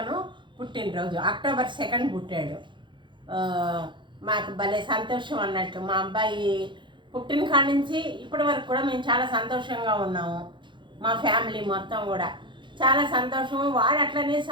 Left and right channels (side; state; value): left; late; 0.23 ms